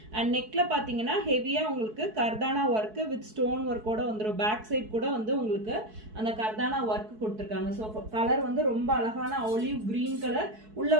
அண்ட் நெக்ல பாத்தீங்கன்னா ஹெவியா உங்களுக்கு கர்தானா ஒர்க் வித் ஸ்டோன் ஒர்க்கோட வந்துடும். பேக் சைட் கூட வந்து உங்களுக்கு அந்த கர்தானா ஒர்க் கொடுத்துருக்காங்க. ஸோ கலர் வந்து ரொம்ப அழகான ஆலிவ் கிரீன் கலர். உள்ள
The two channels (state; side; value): late; left; 4.6 ms